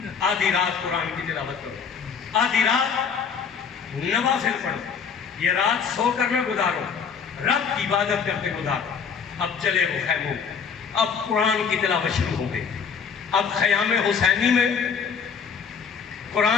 آدھی رات قرآن کی تلاوت کرو, آدھی رات نوافل پڑھو. یہ رات سو کر نہ گزارو, رب کی عبادت کرتے گزارو. اب چلے وہ خیموں, اب قرآن کی تلاوت شروع ہو گئی. اب خیام حسینی میں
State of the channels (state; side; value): quieter; right; 6.3 dB